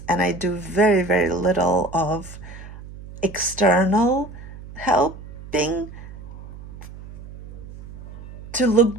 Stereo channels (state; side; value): noise; right; hum, 15 dB below the sound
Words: And I do very, very little of external helping to look